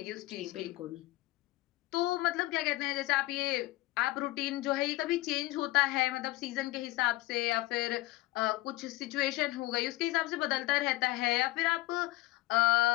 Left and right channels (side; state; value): right; quieter; 19.1 dB